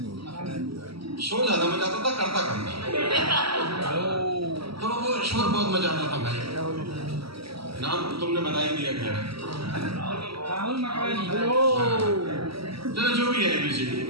शोर ज्यादा मचाता था, करता कम था, तो वो शोर बहुत मचाता था भाई। नाम तुमने बता ही दिया, खैर चलो जो भी है एबीसीडी,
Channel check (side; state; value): left; late; 0.75 ms